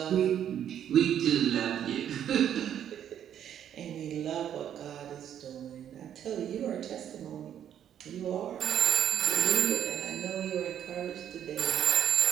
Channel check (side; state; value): left; quieter; 9.9 dB